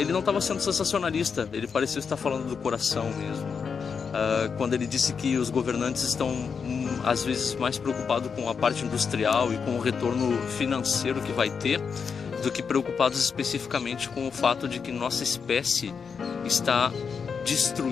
não estava sendo sensacionalista, ele parecia estar falando do coração mesmo. Quando ele disse que os governantes estão às vezes mais preocupados com a parte industrial e com o retorno financeiro que vai ter, do que preocupados especificamente com o fato de que nossa espécie está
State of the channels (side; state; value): right; quieter; 6.0 dB